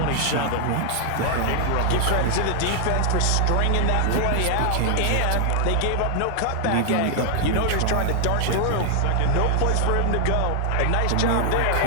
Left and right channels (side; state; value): both; different; correlation 0.00